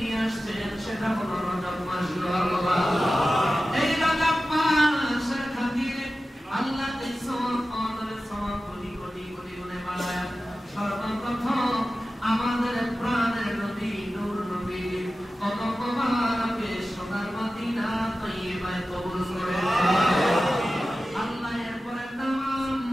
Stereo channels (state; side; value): normal; both; correlation 0.94